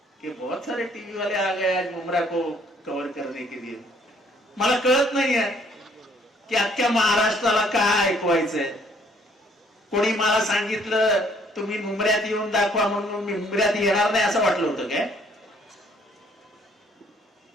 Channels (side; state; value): both; normal; correlation 0.63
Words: कि बहुत सारे टीवी वाले आ गए आज मुमरा को कव्हर करने के लिए। मला कळत नाहीये की अख्ख्या महाराष्ट्राला काय ऐकवायचंय। कोणी मला सांगितलं तुम्ही मुंबऱ्यात येऊन दाखवा म्हणून मी मुंबऱ्यात येणार नाही असं वाटलं होतं काय?